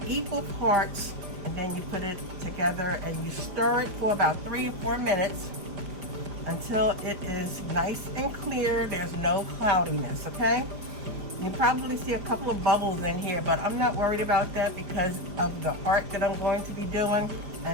equal parts, and then you put it together and you stir it for about 3 or 4 minutes until it is nice and clear. There's no cloudiness, okay? You probably see a couple of bubbles in here, but I'm not worried about that because of the art that I'm going to be doing,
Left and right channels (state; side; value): late; left; 5.0 ms